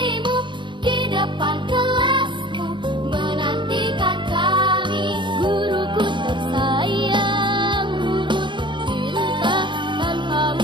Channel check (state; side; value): late; left; 0.23 ms